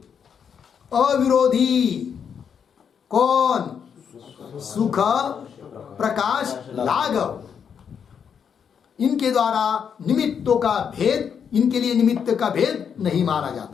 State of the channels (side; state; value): right; quieter; 7.3 dB